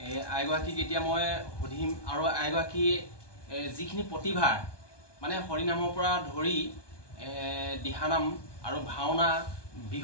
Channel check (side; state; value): right; late; 1.2 ms